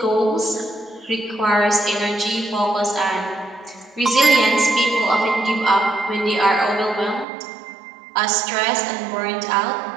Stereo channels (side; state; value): left; drops out; at 7.2 s